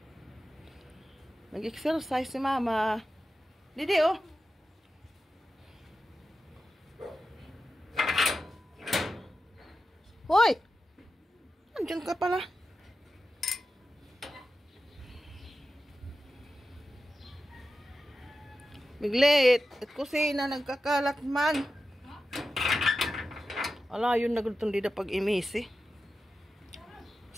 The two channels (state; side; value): normal; both; correlation 0.92